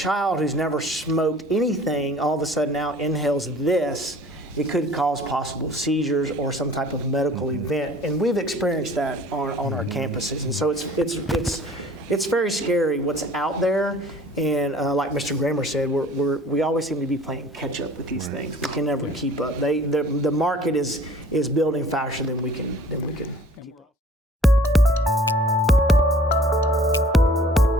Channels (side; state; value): both; normal; correlation 0.51